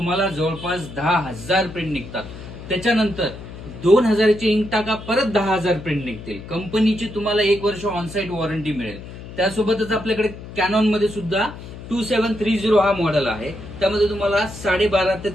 जवळपास 10,000 प्रिंट निघतात. त्याच्यानंतर 2,000ची इंक टाका, परत 10,000 प्रिंट निघतील. कंपनीची तुम्हाला 1 वर्ष ऑनसाईट वॉरंटी मिळेल. त्यासोबतच आपल्याकडे कॅनॉन मध्ये सुद्धा 2730 हा मॉडेल आहे. त्यामध्ये तुम्हाला 12,500 ते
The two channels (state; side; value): noise; left; hum, 13 dB below the sound